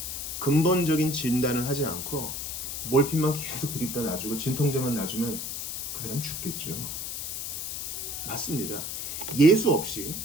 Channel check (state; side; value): noise; left; hiss, 5 dB below the sound